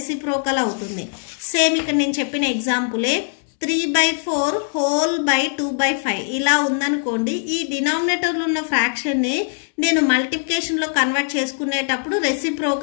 అవుతుంది. సేమ్ ఇక్కడ నేను చెప్పిన ఎగ్జాంపులే 3/4 హోల్ బై 2/5 ఇలా ఉందనుకోండి. ఈ డినామినేటర్లో ఉన్న ఫ్రాక్షన్ని నేను మల్టిప్లికేషన్లో కన్వర్ట్ చేసుకునేటప్పుడు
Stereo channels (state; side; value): silent; right; digital silence